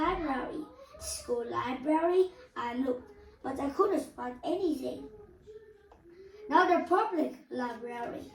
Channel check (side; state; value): both; identical; correlation 1.00